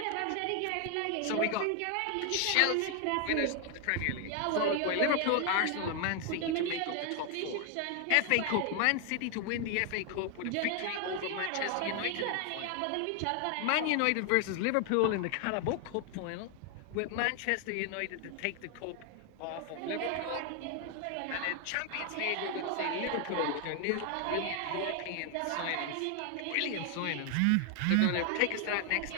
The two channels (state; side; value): different; both; correlation 0.00